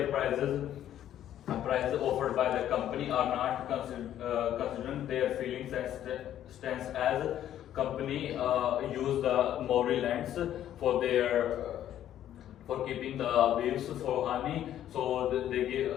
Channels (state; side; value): quieter; right; 11.4 dB